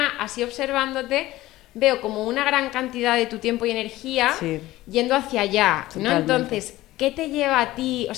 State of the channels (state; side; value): quieter; right; 16.8 dB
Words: así observándote, veo como una gran cantidad de tu tiempo y energía yendo hacia allá, ¿no? Totalmente. Entonces, ¿qué te lleva a ti, o